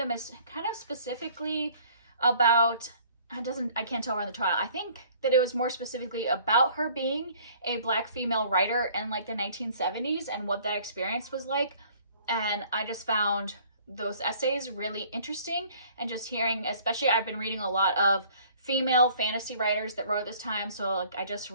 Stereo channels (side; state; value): both; inverted; correlation -0.55